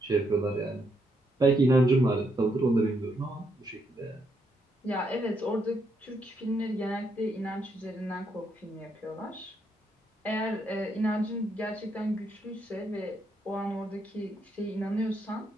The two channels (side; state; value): both; normal; correlation 0.77